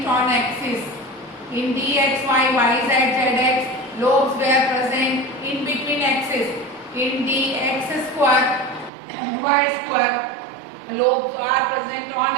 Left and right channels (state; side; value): drops out; left; at 8.9 s